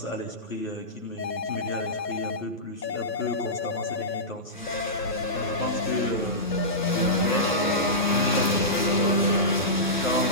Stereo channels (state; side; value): normal; both; correlation -0.17